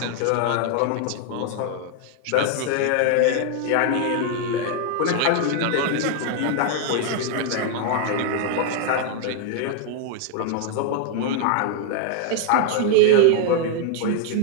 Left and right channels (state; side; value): different; both; correlation 0.00